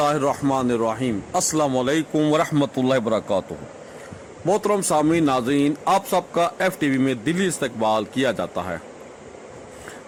अस्सलाम वालेकुम वरहमतुल्लाहि वबरकातुहू। मोहतरम सामीन नाज़रीन, आप सबका FTV में दिली इस्तकबाल किया जाता है।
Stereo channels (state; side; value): identical; both; correlation 1.00